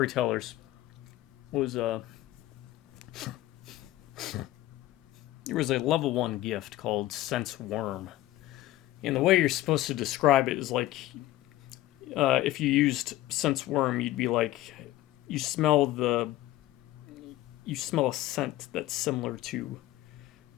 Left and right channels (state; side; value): quieter; right; 15.5 dB